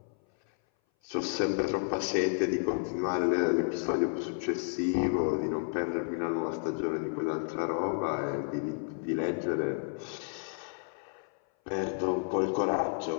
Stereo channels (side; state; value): right; silent; 57 dB below the other